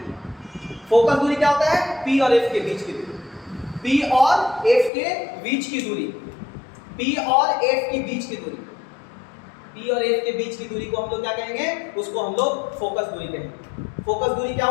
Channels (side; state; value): right; drops out; at 4.9 s